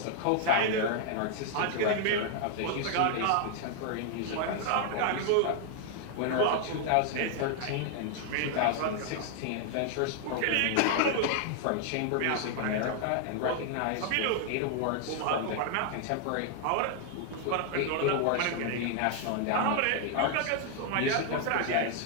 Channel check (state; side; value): different; both; correlation 0.00